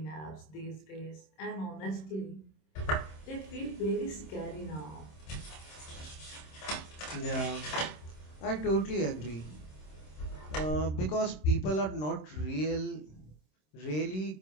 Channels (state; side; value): late; right; 26 ms